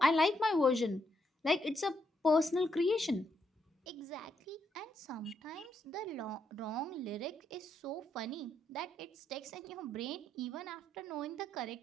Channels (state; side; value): normal; both; correlation 0.77